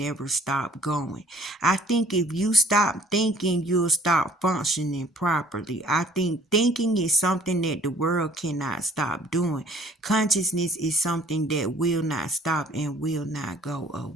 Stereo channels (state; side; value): normal; both; correlation 0.54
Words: stop going. I think if you stop thinking, you'll stop functioning properly. I think thinking is something that the world cannot stop doing. Consciousness is something that will not stop and will not go